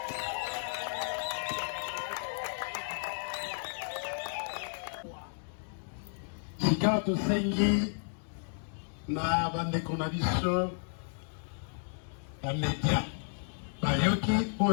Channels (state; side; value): silent; right; digital silence